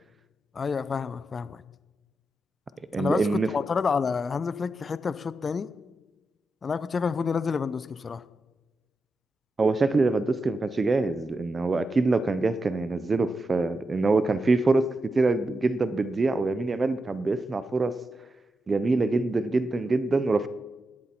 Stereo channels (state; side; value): normal; both; correlation 0.88